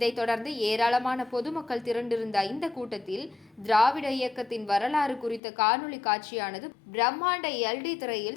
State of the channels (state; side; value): drops out; right; at 5.4 s